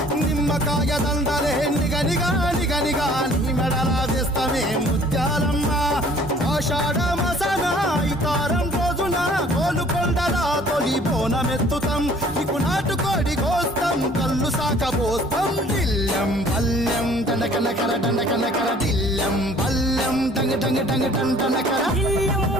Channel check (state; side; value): normal; both; correlation 0.54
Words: నిమ్మకాయ దండలే నిగనిగా నిగనిగా, నీ మెడలా వేస్తామే ముత్యాలమ్మ, ఆషాఢ మసన ఇతారం రోజున గోలుకొండల తొలి బోనమెత్తుతాం, నీకు నాటుకోడి కోస్తాం, కళ్ళు సాకబోస్తాం, దిల్లెం పల్లెం దండకనకర దండకనకర, దిల్లెం పల్లెం డంగ డంగ డంగ డండనకర, దిల్లెం